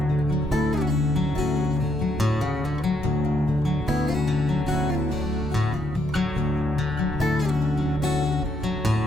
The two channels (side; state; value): right; noise; rumble, 12 dB below the sound